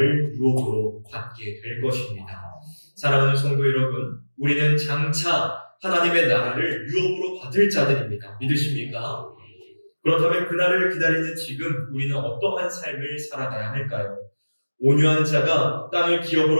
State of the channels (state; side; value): inverted; both; correlation -1.00